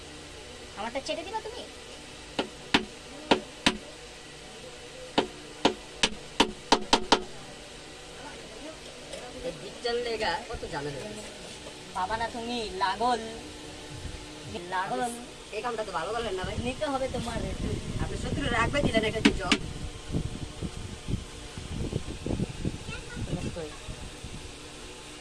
আমারটা ছেড়ে দিবা তুমি? ডিজিটাল লেগা কত ঝামেলা। বাবা না তুমি লাগল লাগল। এই কামটা তো ভালো করলেন না ভাই। নিতে হবে তোমার। আপনি সত্যি রাখবে দিলেন একটা জব।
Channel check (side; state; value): both; identical; correlation 1.00